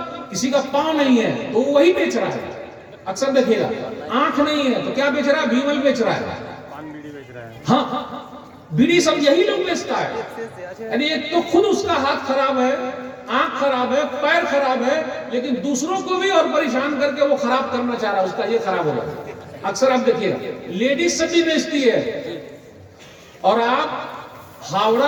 किसी का पाँव नहीं है तो वो वही बेच रहा है। अक्सर देखिएगा, आंख नहीं है तो क्या बेच रहा है? भीमल बेच रहा है। हाँ, बीड़ी सब यही लोग बेचता है। यानी एक तो खुद उसका हाथ खराब है, आंख खराब है, पैर खराब है, लेकिन दूसरों को भी और परेशान करके वो खराब करना चाह रहा है, उसका ये खराब होगा। अक्सर आप देखिएगा लेडीज से भी बेचती है। और आप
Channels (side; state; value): both; identical; correlation 1.00